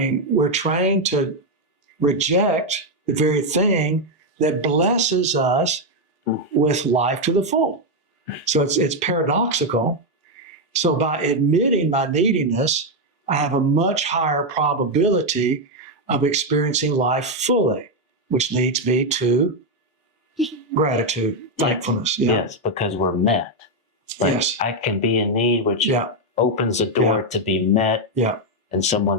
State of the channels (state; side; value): normal; both; correlation 0.03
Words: we're trained to reject the very thing that blesses us with life to the full. So it's paradoxical. So by admitting my neediness, I have a much higher probability of experiencing life fully, which leads me to gratitude, thankfulness. Yeah. Yes, because we're met. Like, Yes. I can be in need, which Yeah. opens the door to be met, Yeah. and